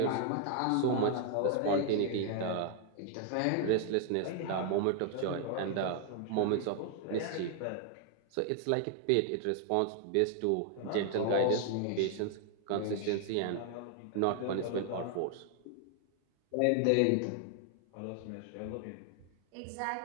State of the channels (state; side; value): different; both; correlation 0.00